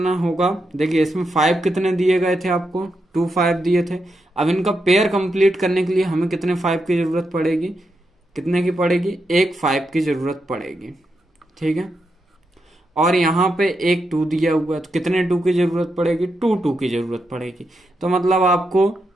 होगा, देखिए इसमें 5 कितने दिए गए थे आपको, 2 5 दिए थे। अब इनका पेयर कंप्लीट करने के लिए हमें कितने 5 की जरूरत पड़ेगी, कितने की पड़ेगी, एक 5 की जरूरत पड़ेगी। ठीक है, और यहाँ पे एक 2 दिया हुआ है तो कितने 2 की जरूरत पड़ेगी, 2 की जरूरत पड़ेगी। तो मतलब आपको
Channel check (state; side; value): normal; both; correlation 0.84